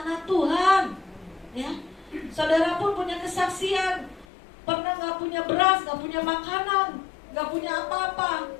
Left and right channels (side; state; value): right; drops out; at 4.2 s